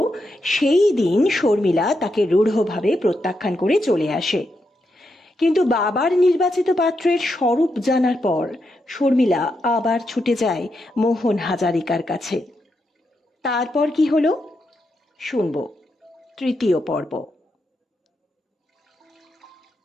সেই দিন শর্মিলা তাকে রূঢ়ভাবে প্রত্যাখ্যান করে চলে আসে। কিন্তু বাবার নির্বাচিত পাত্রের স্বরূপ জানার পর শর্মিলা আবার ছুটে যায় মোহন হাজারিকার কাছে। তারপর কি হলো শুনব তৃতীয় পর্ব।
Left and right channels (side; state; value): both; normal; correlation 0.83